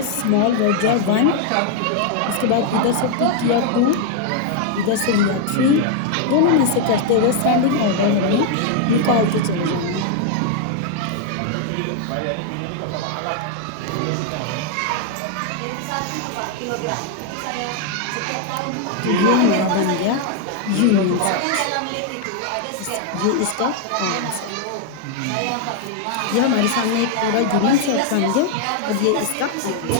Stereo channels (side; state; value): both; different; correlation 0.00